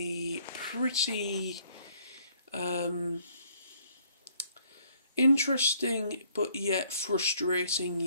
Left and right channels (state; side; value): inverted; both; correlation -0.63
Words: pretty interesting but yet frustrating